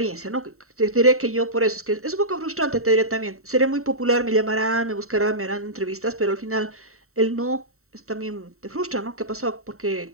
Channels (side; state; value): left; late; 0.63 ms